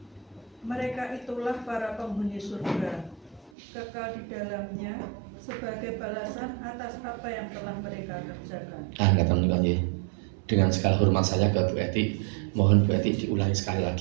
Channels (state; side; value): drops out; left; at 3.5 s